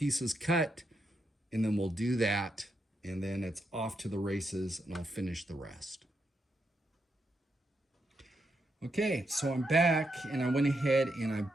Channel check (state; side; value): normal; both; correlation 0.82